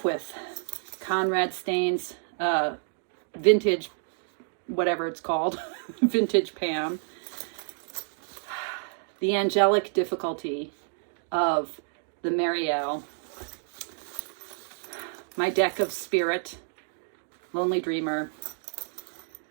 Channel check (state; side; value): silent; left; digital silence